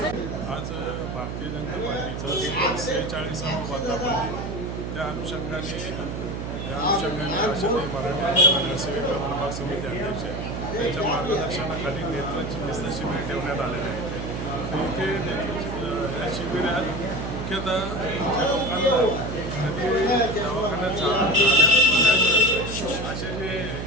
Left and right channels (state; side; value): noise; right; hum, 5 dB below the sound